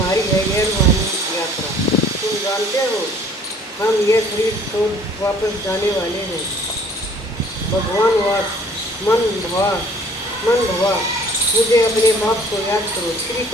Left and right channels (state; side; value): normal; both; correlation 0.55